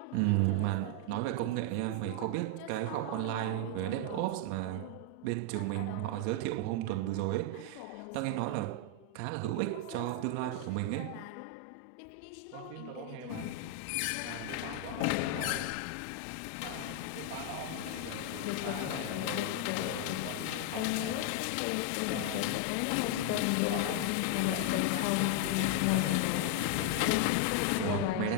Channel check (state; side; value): different; both; correlation 0.00